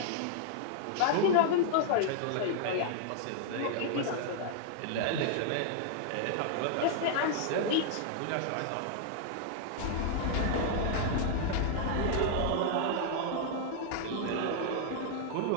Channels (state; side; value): different; both; correlation -0.01